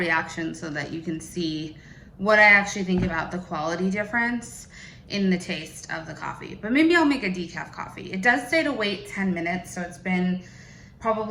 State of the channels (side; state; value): both; identical; correlation 1.00